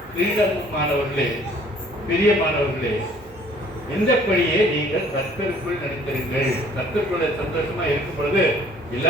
கிரீடமுமானவர்களே, பிரியமானவர்களே, இந்தபடியே நீங்கள் கர்த்தருக்குள் நடித்திருங்கள். கர்த்தருக்குள்ள சந்தோஷமா இருக்கும் பொழுது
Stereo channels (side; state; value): both; normal; correlation 0.55